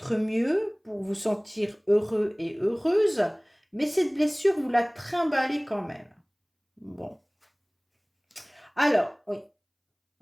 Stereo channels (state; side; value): identical; both; correlation 1.00